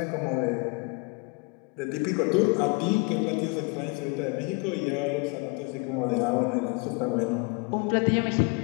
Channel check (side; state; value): right; quieter; 30.5 dB